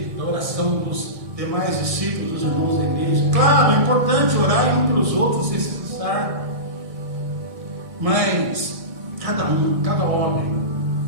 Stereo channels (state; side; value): late; left; 1.6 ms